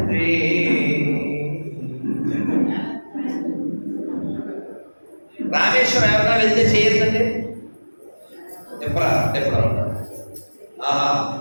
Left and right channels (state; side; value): inverted; both; correlation -1.00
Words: రామేశ్వరం ఎవరైనా వెళ్తే చేయొద్దండి. ఎప్పుడు